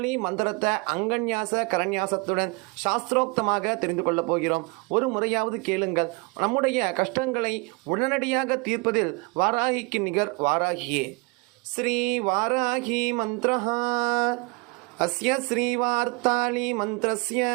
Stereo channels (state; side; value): quieter; left; 29.9 dB